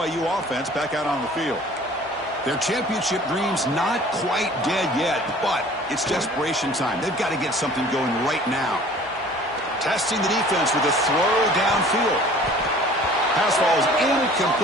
offense back out on the field. Their championship dreams not quite dead yet, but it's desperation time. They've got to get something going right now. Testing the defense with a throw downfield. Pass ball is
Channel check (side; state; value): both; normal; correlation 0.49